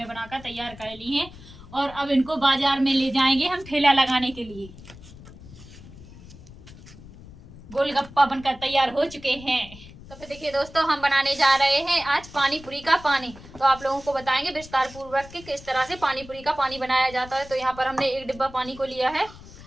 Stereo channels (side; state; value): left; noise; rumble, 18 dB below the sound